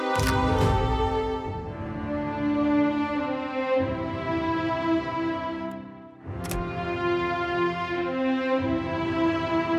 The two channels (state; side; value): identical; both; correlation 1.00